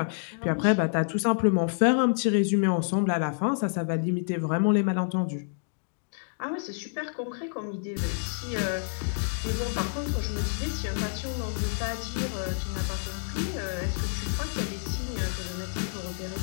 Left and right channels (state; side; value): silent; right; digital silence